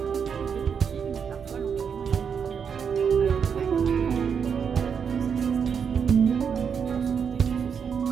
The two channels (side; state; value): left; quieter; 6.8 dB